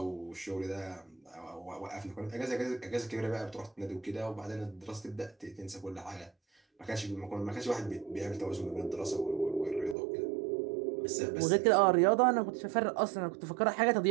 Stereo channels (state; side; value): drops out; left; at 10.0 s